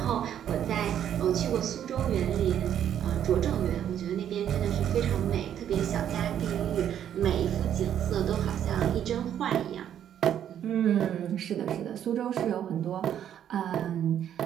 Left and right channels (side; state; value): left; quieter; 10.0 dB